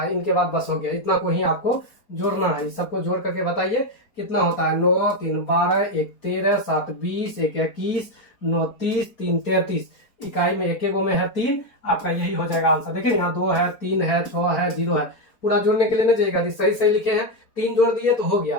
इनके बाद बस हो गया, इतना को ही आपको जोड़ना है। सबको जोड़ करके बताइए कितना होता है। 9 3 12, 1 13, 7 20, 1 21, 9 30, 3 33, इकाई में एक में है 3, आपका यही हो जाएगा आंसर। देखिए यहाँ 2 है, 3 है, 6 है, 0 है, पूरा जोड़ने के लिए नहीं जाएगा, सही लिखे हैं, 3 जोड़ दिए तो हो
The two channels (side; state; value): right; late; 4.4 ms